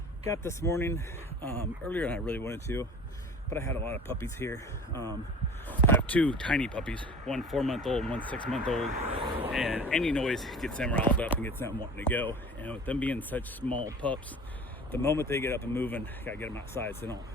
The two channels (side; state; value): both; normal; correlation 0.41